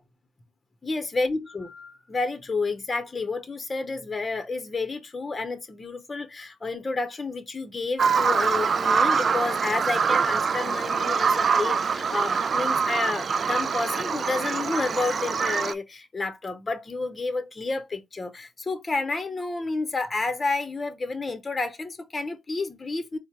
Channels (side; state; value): both; normal; correlation 0.85